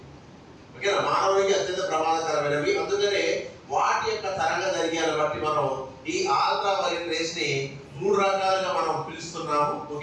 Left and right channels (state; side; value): identical; both; correlation 1.00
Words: ఓకేనా, మానవునికి అత్యంత ప్రమాదకరమైనవి. అందుకనే వాటి యొక్క తరంగ దైర్ఘ్యాన్ని బట్టి మనం ఈ అల్ట్రా వైలెట్ రేస్ ని 3 రకాలుగా మనం పిలుస్తున్నాము.